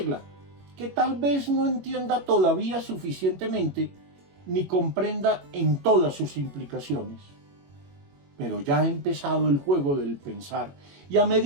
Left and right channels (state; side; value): late; left; 21 ms